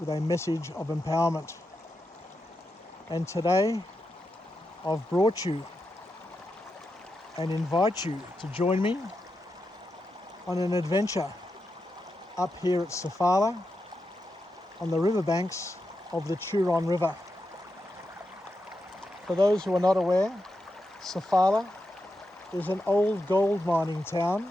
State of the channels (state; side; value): normal; both; correlation 0.87